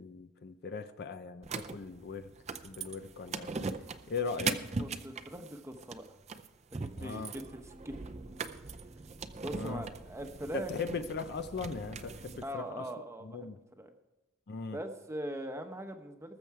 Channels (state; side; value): normal; both; correlation 0.36